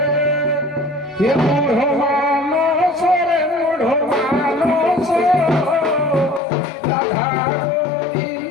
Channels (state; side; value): drops out; right; at 6.4 s